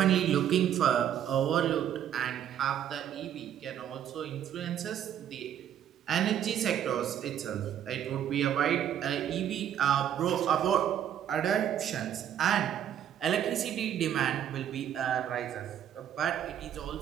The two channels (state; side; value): quieter; left; 10.0 dB